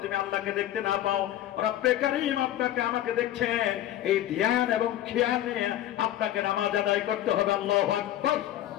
তুমি আল্লাহকে দেখতে না পাও, রব্বে কারীম আপনাকে আমাকে দেখছেন, এই ধ্যান এবং খেয়াল নিয়ে আপনাকে নামাজ আদায় করতে হবে। আল্লাহু আকবার।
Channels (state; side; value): quieter; right; 12.8 dB